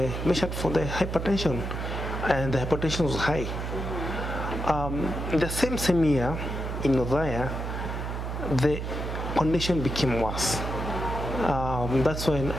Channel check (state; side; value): noise; right; hum, 4 dB below the sound